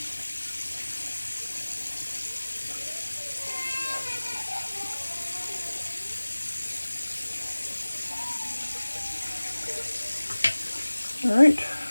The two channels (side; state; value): both; inverted; correlation -1.00